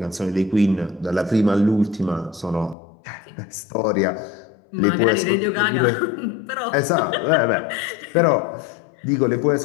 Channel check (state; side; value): drops out; right; at 2.8 s